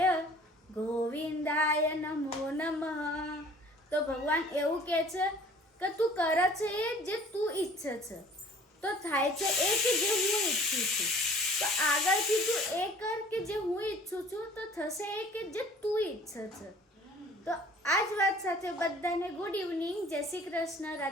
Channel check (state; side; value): normal; both; correlation 0.51